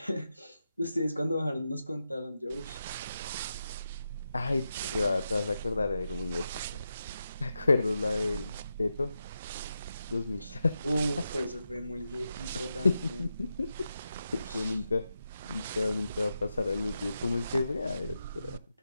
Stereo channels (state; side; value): inverted; both; correlation -0.88